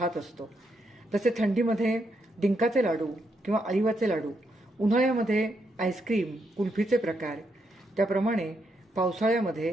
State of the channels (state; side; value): normal; both; correlation 0.79